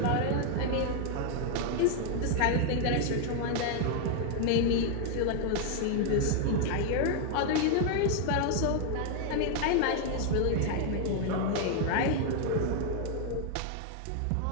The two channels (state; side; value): different; both; correlation 0.00